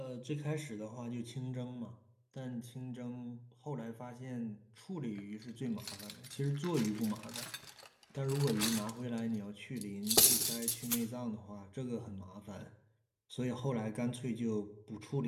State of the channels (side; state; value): both; identical; correlation 1.00